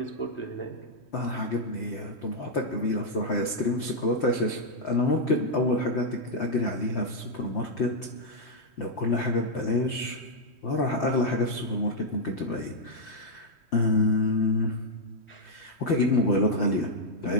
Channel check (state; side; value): late; right; 3.1 ms